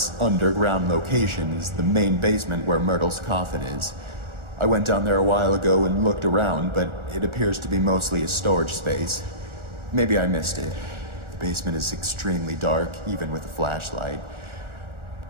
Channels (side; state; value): left; late; 1.4 ms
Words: underground location is the main basement where Myrtle's coffin is. I went down there a while ago and looked around, but it appears to be mostly a storage space. Maybe I missed it. The basement is extremely dark, even with a flashlight.